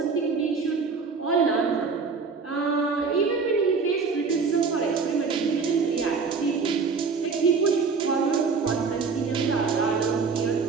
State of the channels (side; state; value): left; quieter; 5.0 dB